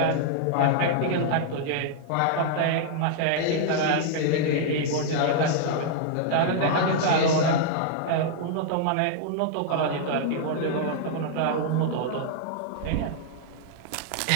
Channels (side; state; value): both; different; correlation -0.01